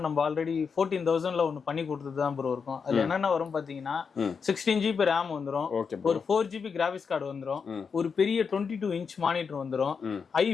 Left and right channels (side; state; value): right; quieter; 5.8 dB